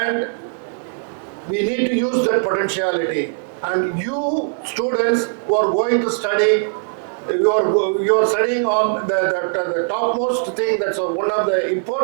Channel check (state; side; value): silent; left; digital silence